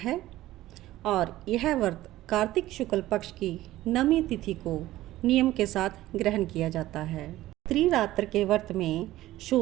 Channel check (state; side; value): quieter; left; 15.6 dB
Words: और यह व्रत कार्तिक शुक्ल पक्ष की नवमी तिथि को नियम के साथ ग्रहण किया जाता है। त्रिरात्र के व्रत में